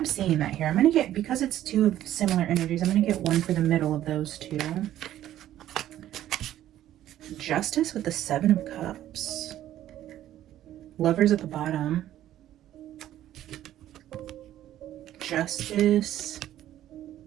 seeing that here. I'm going to get, because it's 2 of similar energies, I'm going to get one for the middle of those 2. Justice with the 7 of Cups. Lovers at the bottom. Justice.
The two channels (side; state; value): left; quieter; 12.6 dB